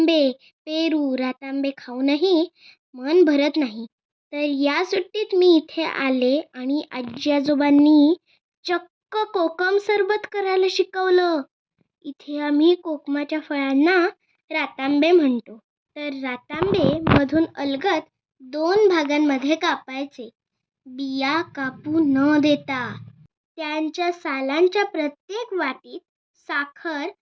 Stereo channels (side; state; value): both; identical; correlation 1.00